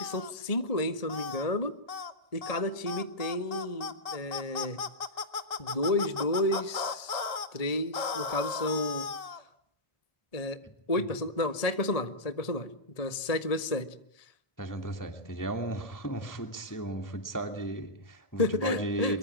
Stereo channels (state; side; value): late; right; 1.7 ms